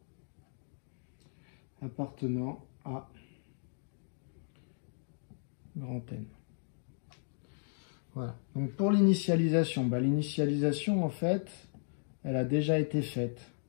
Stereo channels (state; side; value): silent; right; digital silence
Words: appartenant à grand N. Voilà. Donc pour l'initialisation, l'initialisation en fait, elle a déjà été faite.